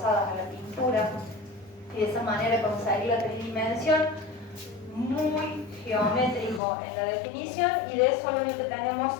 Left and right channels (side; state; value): right; drops out; at 6.6 s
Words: a la pintura, y de esa manera conseguir la tridimensión. Muy geométrico en la definición, y de eso lo único que tenemos